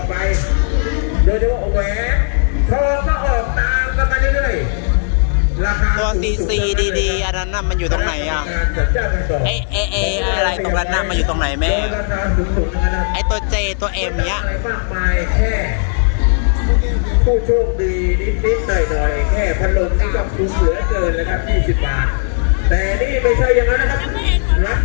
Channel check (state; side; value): silent; right; 61 dB below the other